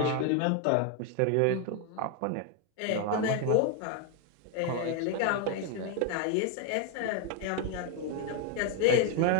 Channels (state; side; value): different; both; correlation 0.00